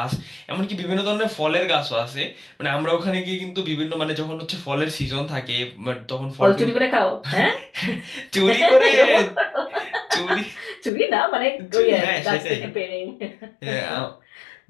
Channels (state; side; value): drops out; right; at 10.9 s